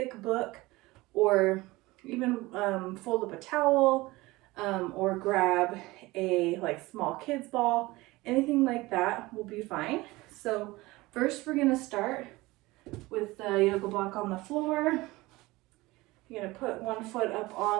book, or even fold up a towel, or grab a small kids ball. Anything like that will be fine. So first we're going to start with the yoga block on the floor. You're going to put one foot up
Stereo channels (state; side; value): quieter; left; 20.6 dB